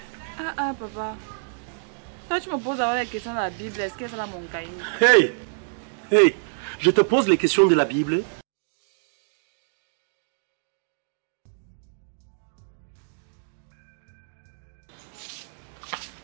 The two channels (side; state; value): left; silent; digital silence